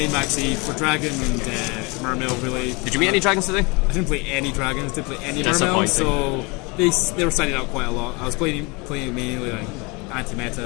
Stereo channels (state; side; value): quieter; right; 28.1 dB